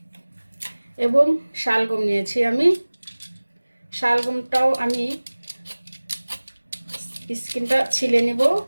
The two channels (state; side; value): inverted; both; correlation -1.00